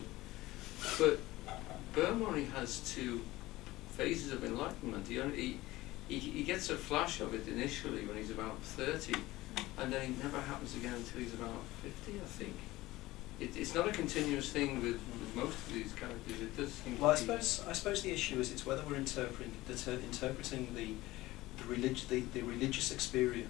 But Bohm only has 2 phases of enlightenment. He gets a flash of it initially when he's about 30, and then it never happens again until he's about 50, I think. It's not a continuous thing with most of these characters. It does seem Well, to be. I suppose the issue is it's whether we're interpreting the religious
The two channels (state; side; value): quieter; right; 18.2 dB